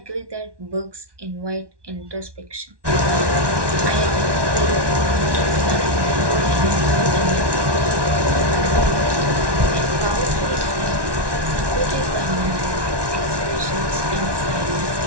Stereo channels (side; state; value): left; late; 1.2 ms